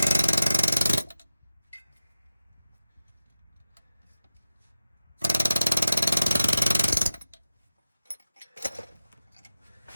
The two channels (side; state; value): both; inverted; correlation -0.93